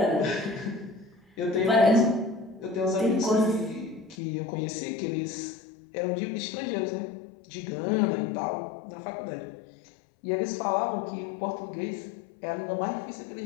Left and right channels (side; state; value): right; drops out; at 4.2 s